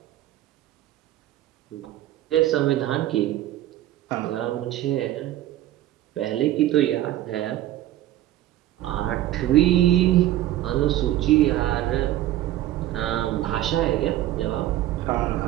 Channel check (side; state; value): left; quieter; 14.0 dB